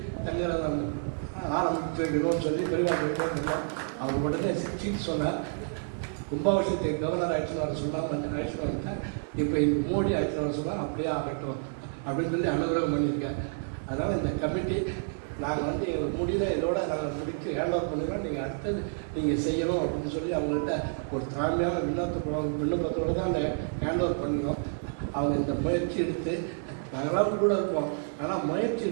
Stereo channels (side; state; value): left; silent; digital silence